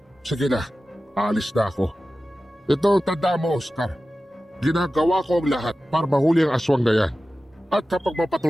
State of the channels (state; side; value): normal; both; correlation 0.95